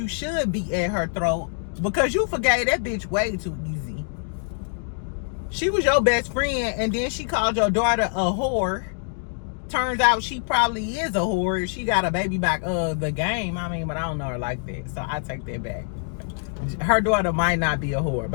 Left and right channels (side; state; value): right; silent; digital silence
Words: should be at her throat because you forgave that bitch way too easy. She was your best friend, and then she called your daughter a whore. turns out she probably is a whore. She got a baby back the game. I mean, but I don't know her like that, so I take that back. Her daughter might not be a whore,